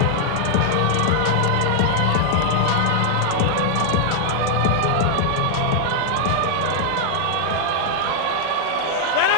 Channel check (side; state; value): both; different; correlation -0.01